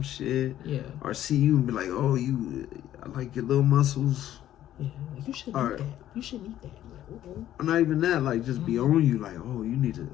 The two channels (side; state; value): right; quieter; 12.4 dB